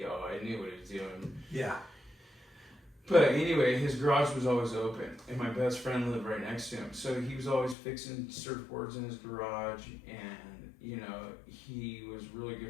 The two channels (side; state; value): right; drops out; at 7.8 s